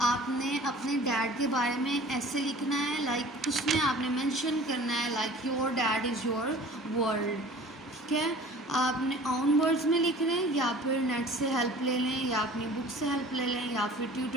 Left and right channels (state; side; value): normal; both; correlation 0.45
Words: आपने अपने डैड के बारे में ऐसे लिखना है, लाइक उसमें आपने मेंशन करना है like your dad is your world. ठीक है, आपने ऑन वर्ड्स में लिख रहे हैं या फिर नेट से हेल्प ले लें या अपनी बुक से हेल्प ले लें या फिर